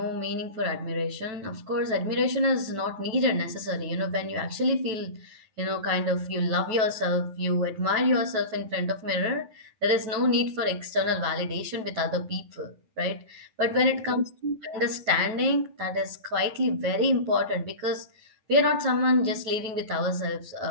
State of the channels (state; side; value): late; left; 9.2 ms